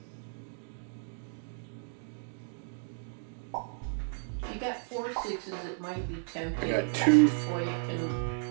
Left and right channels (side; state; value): left; silent; digital silence